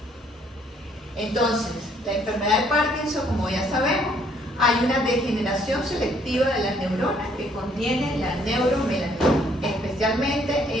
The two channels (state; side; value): normal; both; correlation 0.65